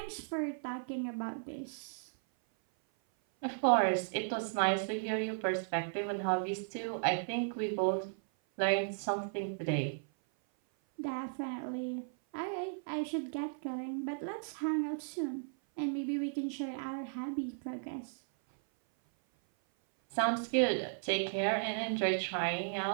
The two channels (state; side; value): silent; left; 54 dB below the other